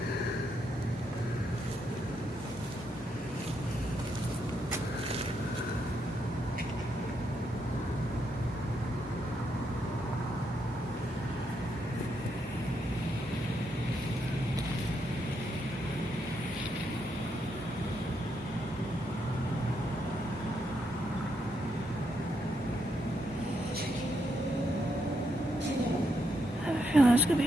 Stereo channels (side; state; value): both; normal; correlation 0.79